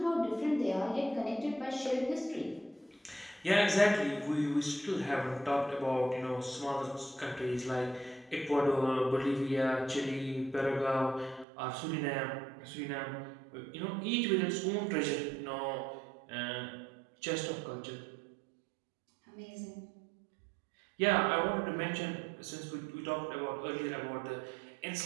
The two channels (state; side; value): drops out; left; at 11.5 s